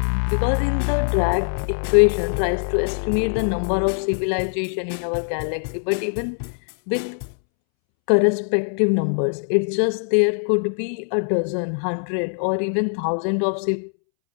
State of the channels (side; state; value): right; silent; 64 dB below the other